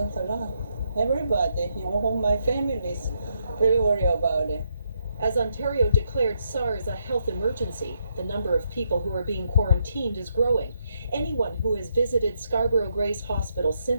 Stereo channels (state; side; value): inverted; both; correlation -0.78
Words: a lot. Everybody, my family is really worried about it. As Ontario declared SARS a health emergency, the number of people who are being quarantined is growing. Anyone who has visited Scarborough Grace Hospital